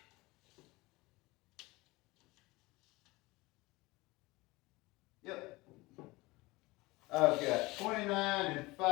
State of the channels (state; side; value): quieter; right; 21.8 dB